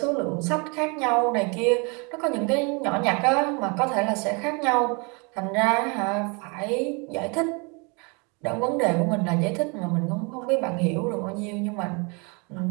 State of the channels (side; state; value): left; quieter; 31.8 dB